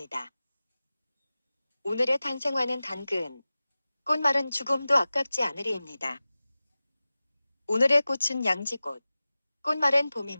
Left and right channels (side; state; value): both; inverted; correlation -0.97